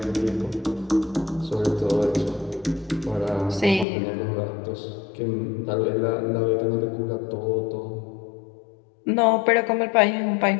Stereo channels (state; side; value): drops out; right; at 3.9 s